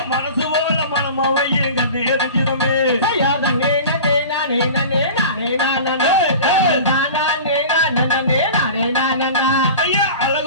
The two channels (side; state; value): both; inverted; correlation -0.37